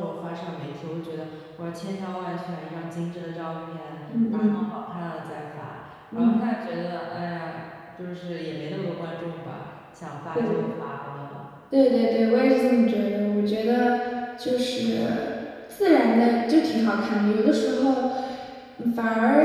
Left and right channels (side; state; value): both; identical; correlation 1.00